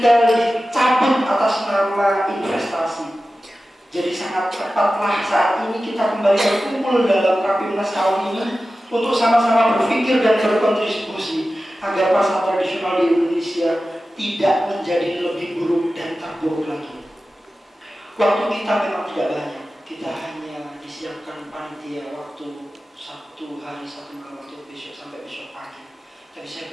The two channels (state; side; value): normal; both; correlation 0.94